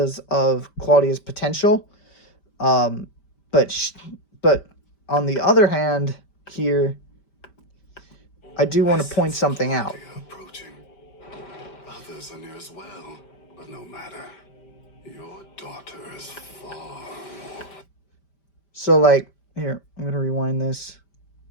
of Claudia's potential. But on the other hand, here, I do want to point something out. Approaching. Others are near as well, but no matter. Your daughter is far more. So, like, here, I'm going to rewind this.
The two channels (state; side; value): late; right; 5.1 ms